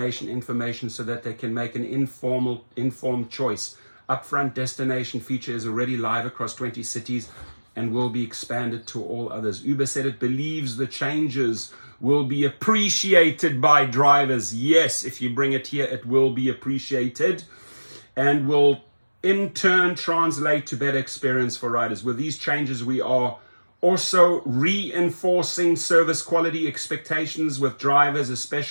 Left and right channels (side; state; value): both; inverted; correlation -1.00